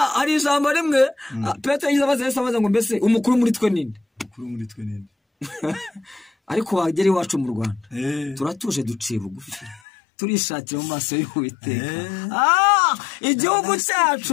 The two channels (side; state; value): right; drops out; at 9.8 s